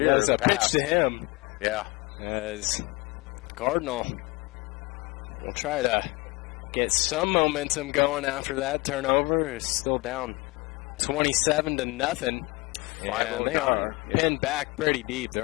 a pitch to him. Yeah. As Cardinal will try to get some momentum going after that turnover. It's still down 27-0. And they are pinned back pretty deep.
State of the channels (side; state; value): right; quieter; 25.1 dB